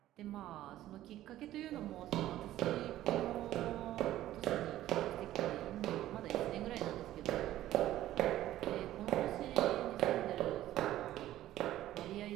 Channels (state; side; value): quieter; left; 13.9 dB